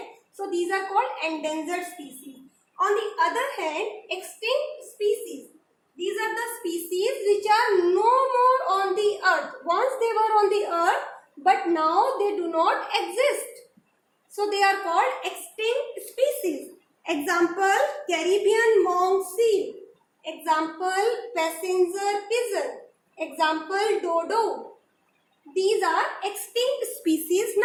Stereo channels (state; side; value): identical; both; correlation 1.00